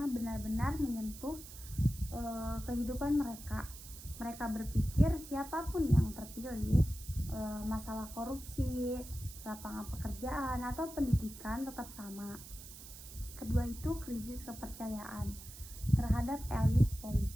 benar-benar menyentuh kehidupan mereka. Mereka berpikir siapapun yang terpilih, masalah korupsi, lapangan pekerjaan, atau pendidikan tetap sama. Kedua itu krisis kepercayaan terhadap elit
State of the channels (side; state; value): right; noise; hiss, 14 dB below the sound